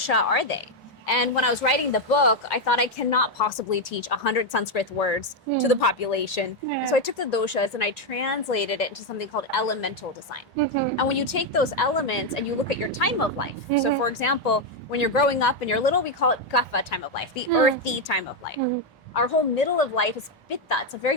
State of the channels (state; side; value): normal; both; correlation 0.04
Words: are they. And when I was writing the book, I thought I cannot possibly teach 100 Sanskrit words to the population. And so I took the doshas and I translated it into something called elemental design. And when you take those elements and you look at your time of life, so for example, when you're growing up and you're little, we call it kapha time of life, the earthy time of life. Our whole middle of life is pitta. It's a